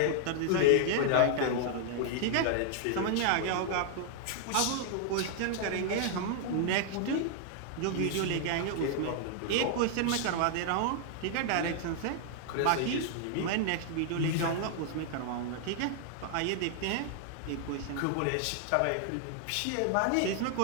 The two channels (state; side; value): different; both; correlation -0.01